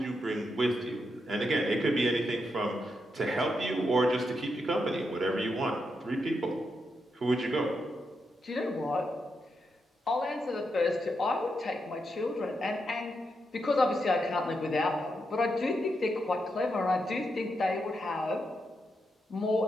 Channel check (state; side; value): normal; both; correlation 0.83